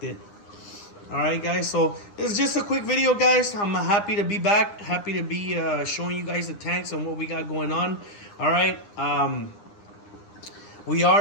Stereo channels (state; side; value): late; right; 9.8 ms